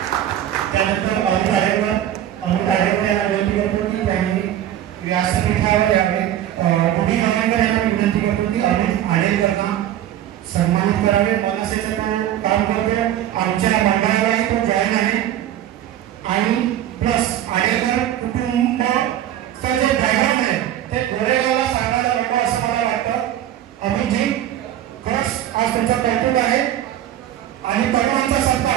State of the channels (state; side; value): quieter; left; 11.8 dB